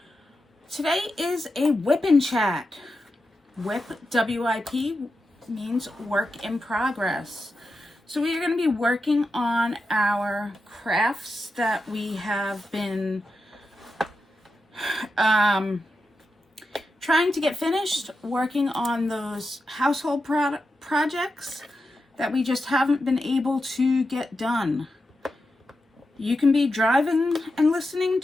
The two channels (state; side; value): normal; both; correlation 0.89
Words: Today is a WIP N Chat. WIP, W-I-P, means work in progress. So we are going to be working on our crafts that we have been trying to get finished, working on those household projects that we just haven't been able to get done. You can be driving and listening